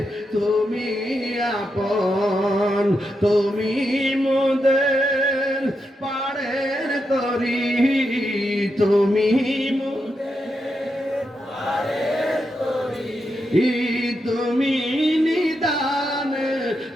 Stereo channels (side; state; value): both; normal; correlation 0.85